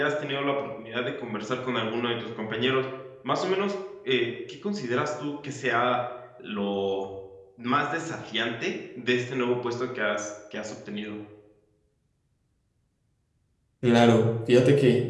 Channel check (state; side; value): identical; both; correlation 1.00